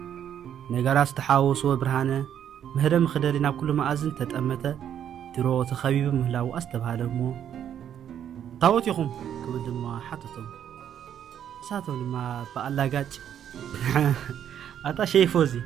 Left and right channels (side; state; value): left; quieter; 9.6 dB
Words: ነገራት ዝተሓወስዎ ብርሃነ ምህደም ክደሊ ናብ ኩሉ መኣዝን ተጠመተ ድሮ ተኸቢቡ ምህላው ኣስተባሃለ እሞ ታወት ይኹም ክብል ድማ ሓተቶም እሳቶም ድማ ብኣላጋጭ ኣታ ሸይፎዚ